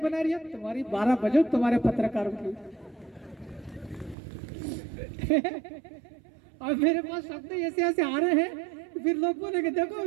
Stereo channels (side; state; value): left; drops out; at 4.2 s